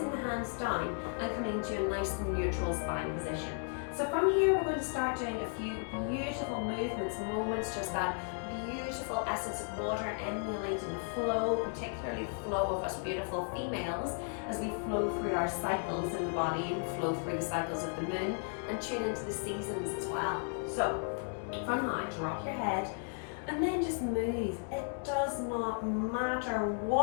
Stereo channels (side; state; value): right; silent; 55 dB below the other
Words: the hands down and coming to a nice and neutral spine position. So from here, we're going to start doing a few beautiful movements, moments, just that beautiful essence of water emulating the flow, particularly the flow of us beautiful females as we flow through our cycles in the body and flow through the cycles of the moon and tune into the seasons as well. So from now, drop your head and then just move. It does not matter